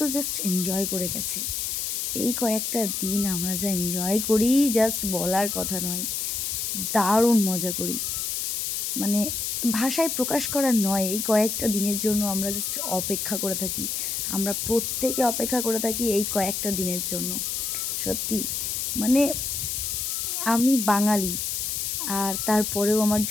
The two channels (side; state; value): left; noise; hiss, 1 dB below the sound